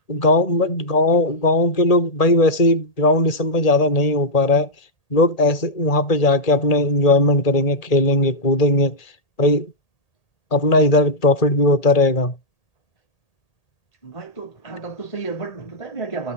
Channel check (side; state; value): right; late; 1.8 ms